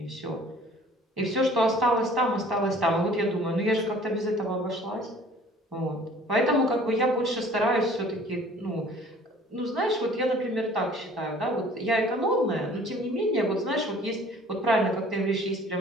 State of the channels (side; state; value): both; normal; correlation 0.52